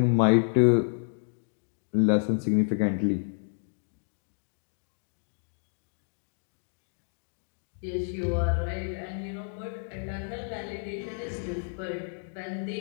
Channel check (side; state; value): right; silent; digital silence